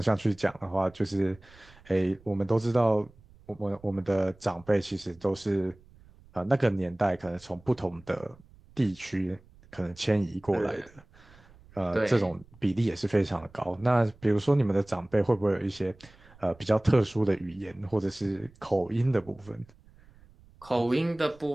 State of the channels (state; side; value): noise; right; rumble, 26 dB below the sound